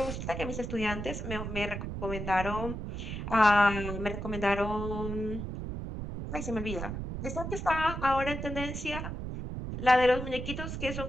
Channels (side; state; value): right; noise; rumble, 5 dB below the sound